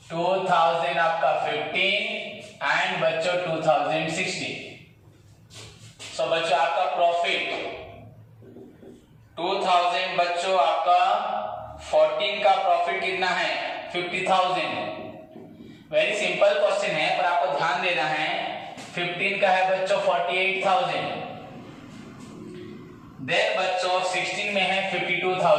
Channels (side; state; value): both; identical; correlation 1.00